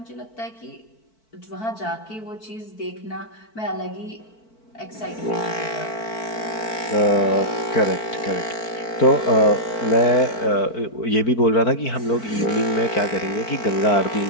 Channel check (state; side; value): late; right; 4.5 ms